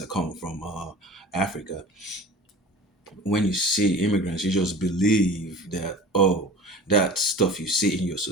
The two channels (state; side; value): normal; both; correlation 0.39